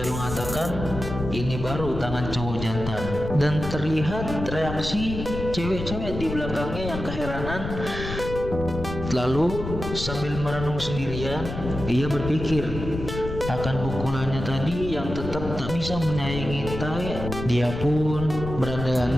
mengatakan ini baru tangan cowok jantan, dan terlihat reaksi cewek-cewek di belakangnya yang keheranan. Lalu sambil merenung sendirian, ia berpikir akan pukulannya tadi yang tetap tak bisa menyayangi Tae. Dia pun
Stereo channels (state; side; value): noise; left; rumble, 7 dB below the sound